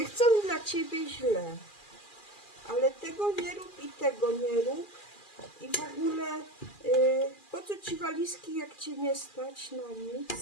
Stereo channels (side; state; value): right; late; 2.4 ms